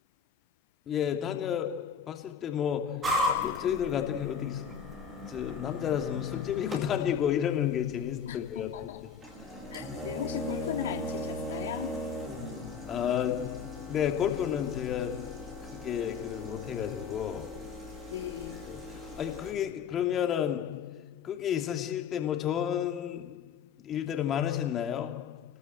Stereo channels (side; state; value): right; quieter; 7.4 dB